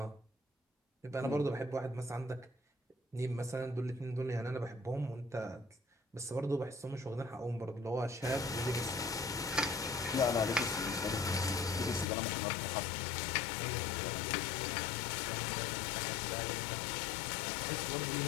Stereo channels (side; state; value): right; drops out; at 12.1 s